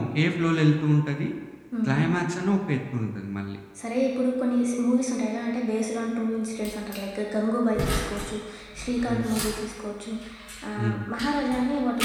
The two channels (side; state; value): both; identical; correlation 1.00